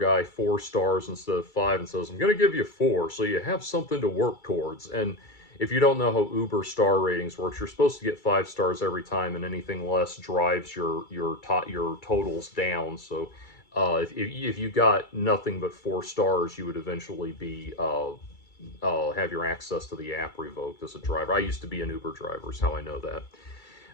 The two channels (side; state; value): right; late; 2.3 ms